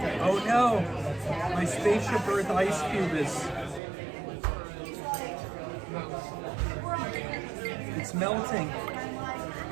Oh no, my Spaceship Earth ice cube is. It's melting.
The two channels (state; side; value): drops out; left; at 3.8 s